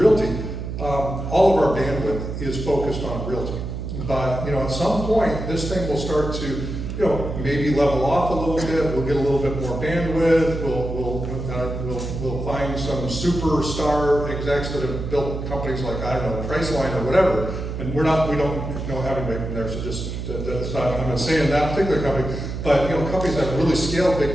all of our bandwidth is focused on realty. But at some point, this thing will start to maybe level off a little bit. We'll get a little bit more bandwidth. We'll find some superstar execs that have built companies like Priceline or whatever. And we don't know how to make from there. So that's not. I'm not saying that particular company, but companies that have really scaled big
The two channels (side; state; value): right; noise; hum, 5 dB below the sound